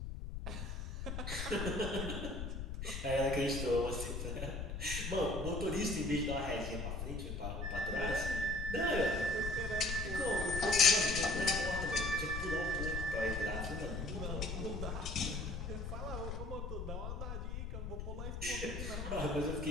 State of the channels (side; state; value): left; noise; rumble, 5 dB below the sound